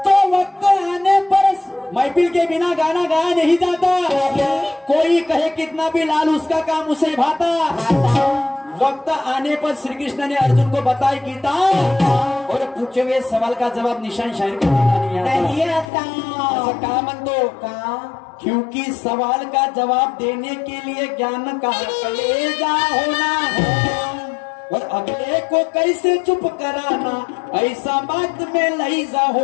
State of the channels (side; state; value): right; drops out; at 15.9 s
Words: तो वक्त आने पर महफिल के बिना गाना गाया नहीं जाता। कोई कहे कितना भी लाल उसका काम उसे भाता। वक्त आने पर श्री कृष्ण ने अर्जुन को बताई गीता और पूछे हुए सवाल का जवाब निशान शायर को देना नहीं आता। ऐसा कहा मन दो का, क्योंकि सवाल का जवाब देने के लिए ज्ञान का कलेजा होना और अगले को कैसे चुप कराना, ऐसा बात में लहीजा